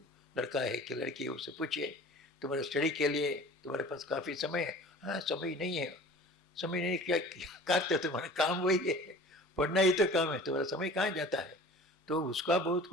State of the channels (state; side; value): normal; both; correlation 0.43